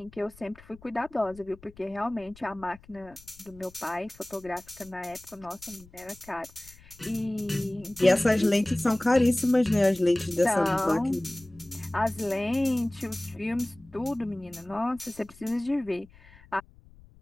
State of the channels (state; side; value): noise; left; rumble, 24 dB below the sound